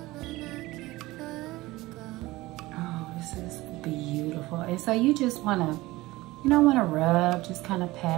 Oh, this is beautiful. And so you just want to, you don't want to rub, just kind of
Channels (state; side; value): quieter; left; 19.2 dB